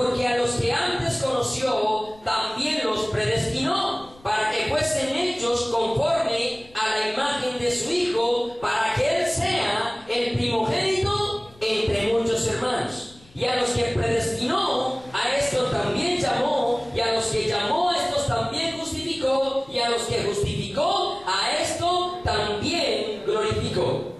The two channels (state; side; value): noise; left; rumble, 26 dB below the sound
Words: a los que antes conoció, también los predestinó, para que fuesen hechos conforme a la imagen de su Hijo, para que Él sea el primogénito entre muchos hermanos. Y a los que predestinó, a estos también llamó, y a los que llamó, a estos también justificó, y a los que justificó, a esto también glorificó.